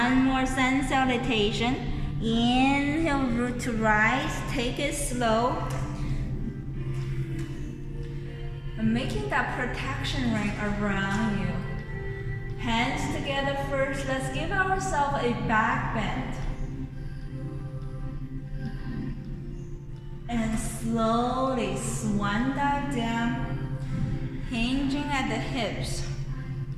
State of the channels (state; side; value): identical; both; correlation 1.00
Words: more sun salutation. Inhale, root to rise. Take it slow. And making that protection ring around you. Hands together first. Let's give ourselves a back bend. And slowly swan dive down, hinging at the hips.